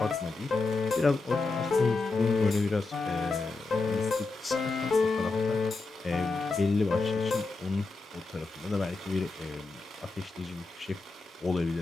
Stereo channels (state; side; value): quieter; right; 3.6 dB